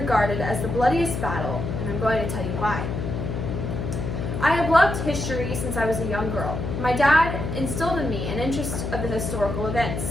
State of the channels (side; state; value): left; noise; hum, 4 dB below the sound